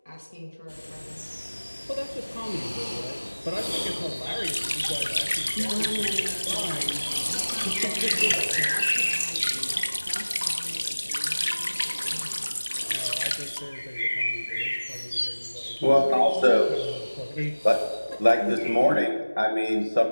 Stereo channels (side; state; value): both; inverted; correlation -1.00